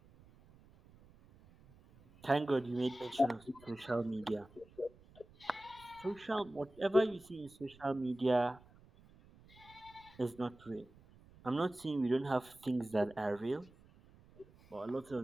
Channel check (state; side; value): noise; right; rumble, 25 dB below the sound